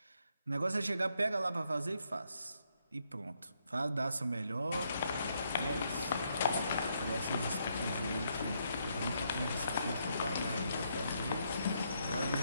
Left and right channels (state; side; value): inverted; both; correlation -0.76